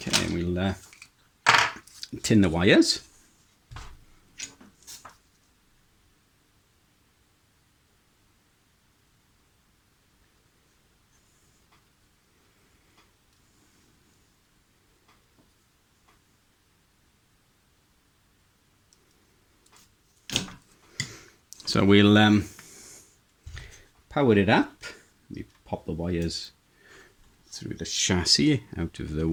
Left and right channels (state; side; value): identical; both; correlation 1.00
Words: and we'll tin the wires. So we'll power it up. We pop the wires through the chassis out of the